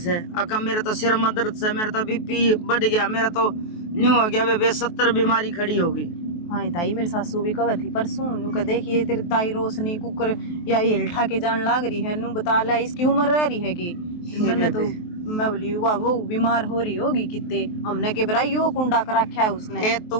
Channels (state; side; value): late; right; 23 ms